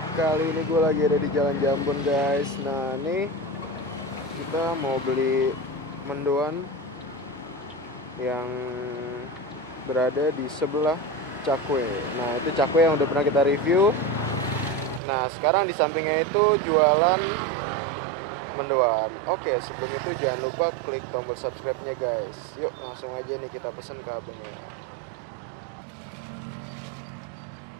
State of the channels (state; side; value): drops out; left; at 15.0 s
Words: Kali ini gue lagi ada di Jalan Jambon guys. Nah nih kita mau beli mendoan yang berada di sebelah Cakwe. Nah itu Cakwe yang udah pernah kita review. Nah sekarang di sampingnya itu jualan mendoan. Oke, sebelum itu jangan lupa klik tombol subscribe-nya guys. Yuk langsung aja nih kita pesen ke abangnya.